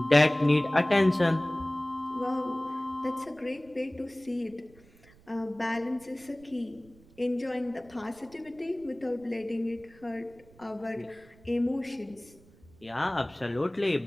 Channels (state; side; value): noise; right; rumble, 26 dB below the sound